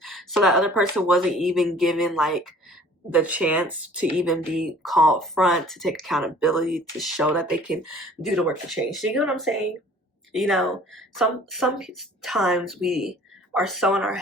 so that other person wasn't even given like the chance to even be called front, to take accountability, to show that they can do the work to change. So you get what I'm saying? You know, sometimes we are so in our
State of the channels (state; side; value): normal; both; correlation 0.51